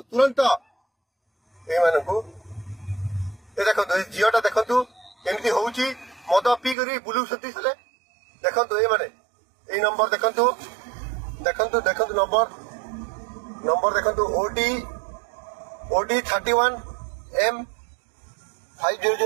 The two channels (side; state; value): left; drops out; at 6.8 s